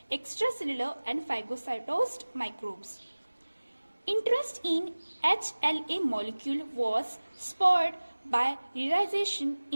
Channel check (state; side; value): inverted; both; correlation -1.00